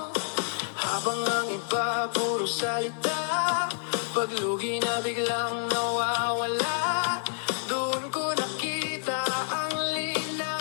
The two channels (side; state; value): right; silent; digital silence